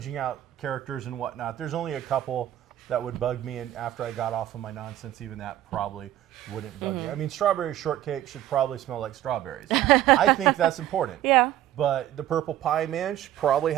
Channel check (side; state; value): left; quieter; 13.0 dB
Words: out characters and whatnot. There's only a couple that would bug me, and after I got off of my nonsense, even that probably wouldn't bug me. I mean, strawberry shortcake should probably smell like strawberries. I think that's important. Yeah. But the purple pie man should probably